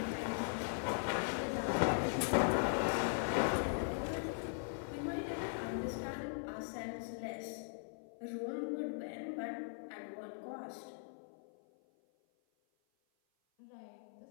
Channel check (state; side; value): silent; right; 51 dB below the other